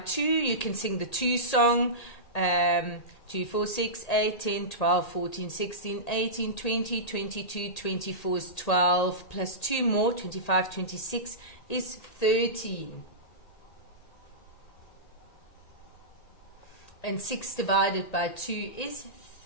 you can sing the 2 song. 2, 4, 6, 8, 10, 12, 14, 16, 18, 20, 22, 24 is 12, plus 2 more, 25, 26 is 13. And 6 divided by 2 is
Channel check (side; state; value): right; late; 1.8 ms